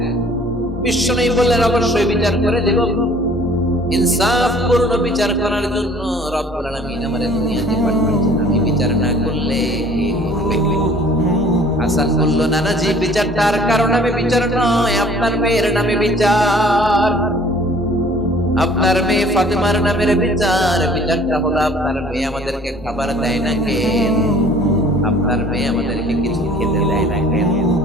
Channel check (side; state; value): both; normal; correlation 0.53